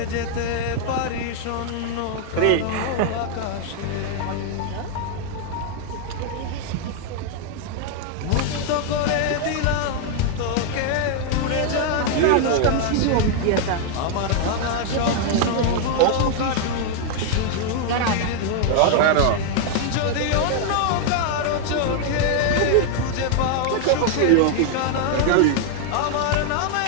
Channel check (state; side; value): different; both; correlation 0.00